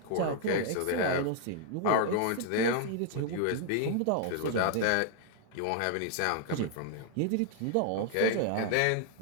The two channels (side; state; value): both; different; correlation 0.00